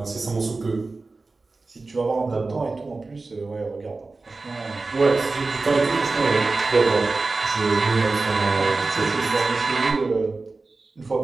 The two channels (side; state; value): left; quieter; 3.6 dB